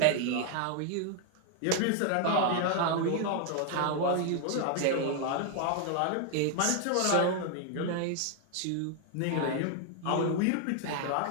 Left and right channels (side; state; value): both; different; correlation 0.00